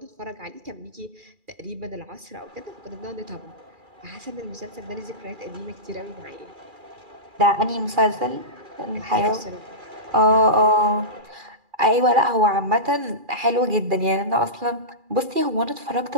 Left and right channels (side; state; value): left; late; 2.4 ms